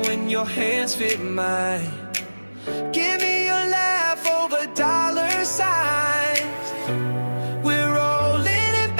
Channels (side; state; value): both; inverted; correlation -1.00